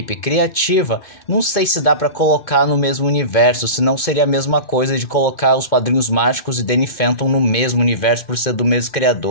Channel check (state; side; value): late; right; 2.2 ms